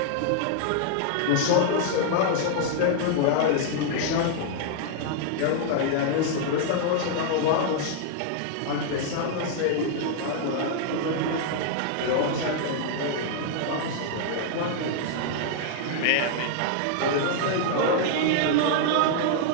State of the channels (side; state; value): both; different; correlation -0.01